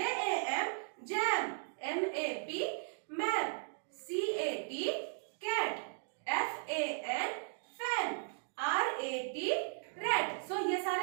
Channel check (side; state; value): left; silent; digital silence